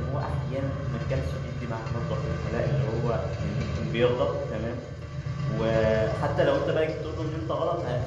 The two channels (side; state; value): both; identical; correlation 1.00